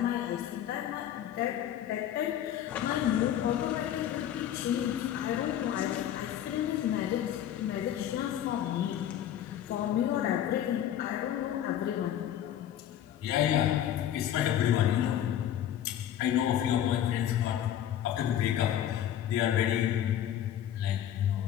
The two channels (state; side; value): quieter; right; 10.9 dB